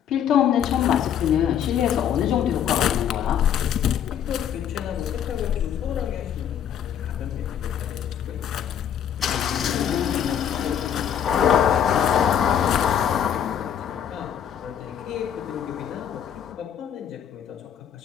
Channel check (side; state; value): right; quieter; 9.1 dB